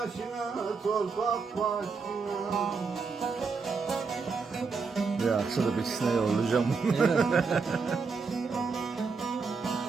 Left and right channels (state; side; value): quieter; left; 4.9 dB